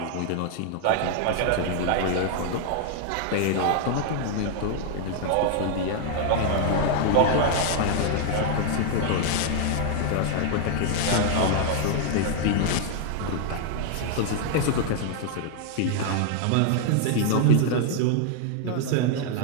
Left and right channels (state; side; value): different; both; correlation 0.00